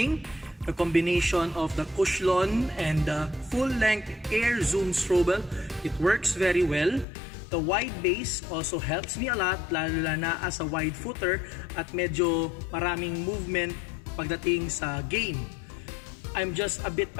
the combination of the Cushlon and the full-length Air Zoom Strobel. It works very well. The wide base also helps me a lot, lalo na as a wide footer at medyo maraming movement pagdating sa game. I'm just a bit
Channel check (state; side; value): drops out; right; at 7.1 s